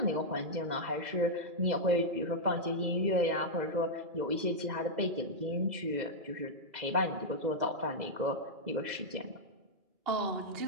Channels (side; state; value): left; late; 2.0 ms